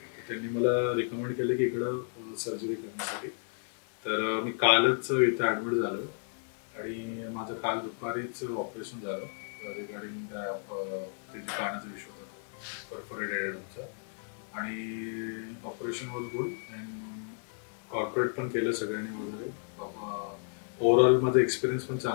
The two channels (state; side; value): silent; right; 56 dB below the other